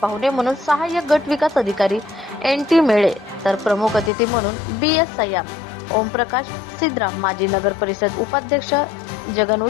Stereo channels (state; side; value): drops out; right; at 4.1 s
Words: पाहुणे म्हणून सहाय्यक गट विकास अधिकारी NT मेळे, तर प्रमुख अतिथी म्हणून BS सय्याम, ओमप्रकाश सिद्राम, माजी नगर परिषद उपाध्यक्ष जगन